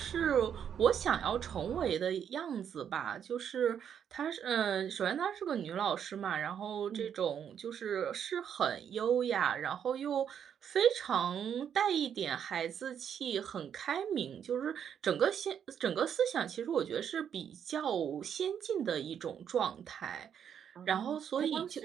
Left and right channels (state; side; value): quieter; left; 8.5 dB